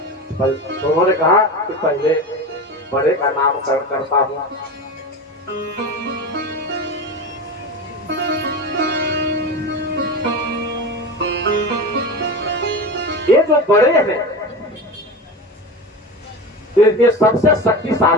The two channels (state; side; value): normal; both; correlation 0.26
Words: तो उन्होंने कहा कि पहले बड़े का नामकरण करता हूँ। ये जो बड़े हैं ये सबसे